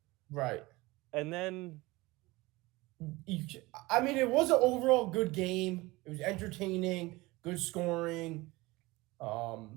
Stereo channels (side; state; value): left; quieter; 21.4 dB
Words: Right. And then, I mean, it was an overall good game. It was entertaining, good scoring.